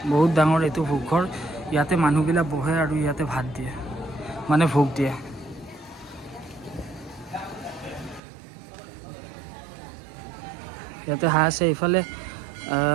বহুত ডাঙৰ এইটো ভোগঘৰ। ইয়াতে মানুহবিলাক বহে আৰু ইয়াতে ভাত দিয়ে, মানে ভোগ দিয়ে। ইয়াতে হাঁহ আছে, এইফালে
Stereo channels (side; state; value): left; drops out; at 8.2 s